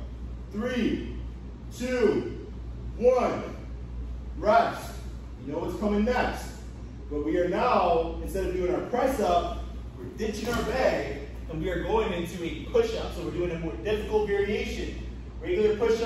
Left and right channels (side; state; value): both; identical; correlation 1.00